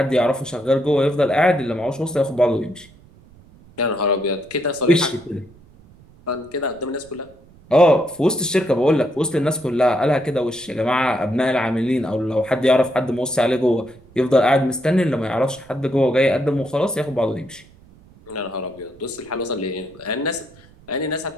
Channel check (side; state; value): right; noise; rumble, 26 dB below the sound